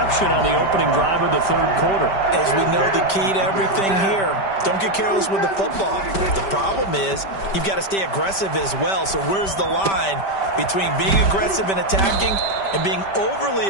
on the opening drive of the third quarter. As we know, the key to everything here, Don't get careless with the football. The problem is you've got to stay aggressive as well. So where's the line between being aggressive and attacking and being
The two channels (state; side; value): late; right; 5.1 ms